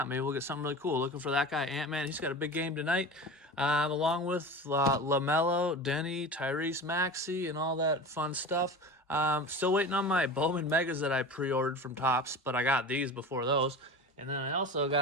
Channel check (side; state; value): both; normal; correlation 0.32